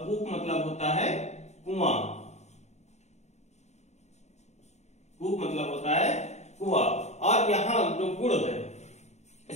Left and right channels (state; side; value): late; right; 0.32 ms